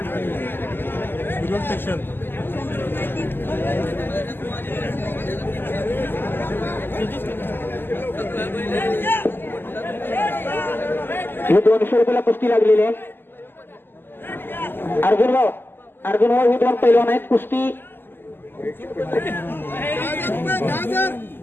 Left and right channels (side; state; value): right; late; 0.098 ms